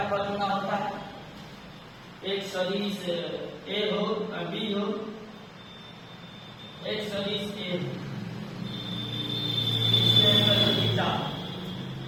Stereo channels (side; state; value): both; identical; correlation 1.00